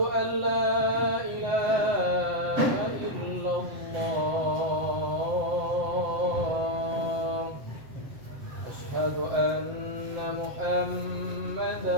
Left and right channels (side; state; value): left; late; 7.6 ms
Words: an la ilaha illallah. Asyhadu anna